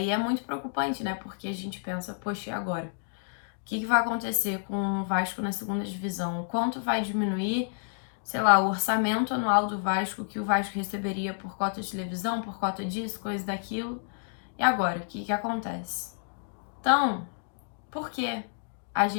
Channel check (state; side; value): silent; right; digital silence